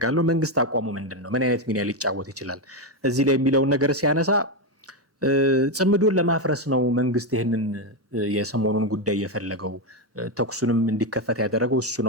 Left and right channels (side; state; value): both; normal; correlation 0.08